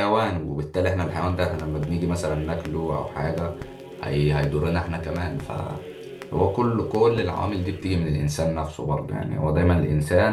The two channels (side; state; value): both; identical; correlation 1.00